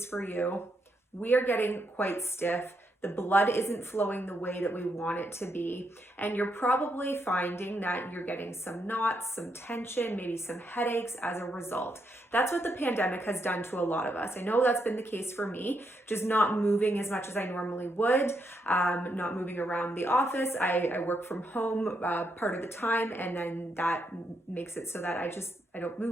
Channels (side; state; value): both; normal; correlation 0.79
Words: for you, we are getting quite stiff. The blood isn't flowing the way that we want it to be. And you're probably finding that you're getting some knots, some tension, maybe some headaches as a result. That's what the pandemic has done to a lot of us. I know that's been the case for me, just not moving as much as I normally would, not moving around the office. I work from home part of the time, and then that makes it so that I don't